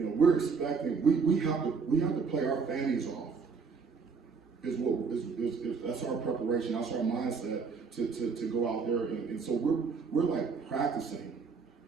expecting, we have to play our fannies off. That's our preparation, that's our mindset to go out there, and so we're like practicing.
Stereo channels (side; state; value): left; quieter; 5.2 dB